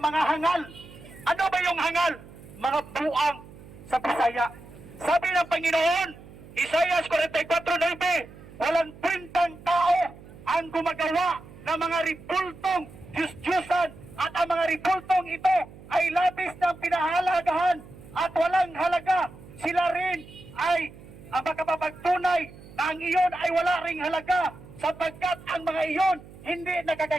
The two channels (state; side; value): noise; right; hum, 19 dB below the sound